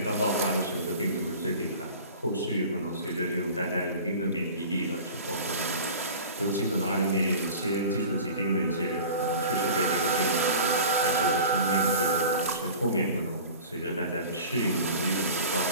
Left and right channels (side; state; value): both; inverted; correlation -0.39